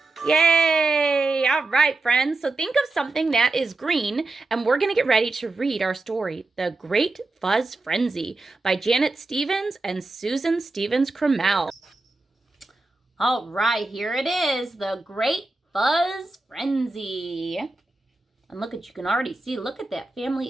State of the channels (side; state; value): left; quieter; 3.2 dB